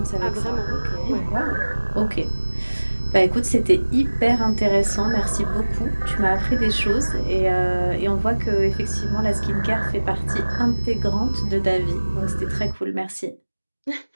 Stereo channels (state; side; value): inverted; both; correlation -1.00